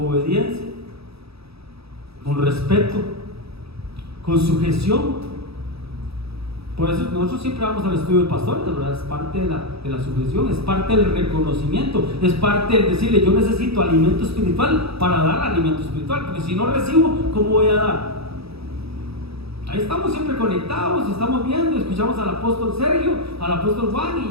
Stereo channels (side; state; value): left; late; 0.77 ms